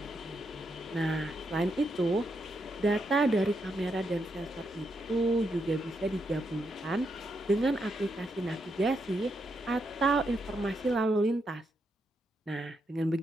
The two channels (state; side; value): normal; both; correlation 0.81